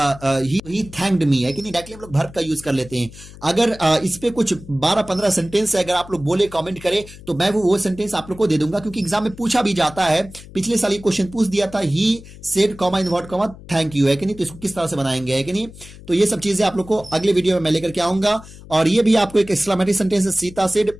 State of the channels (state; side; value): noise; left; hum, 18 dB below the sound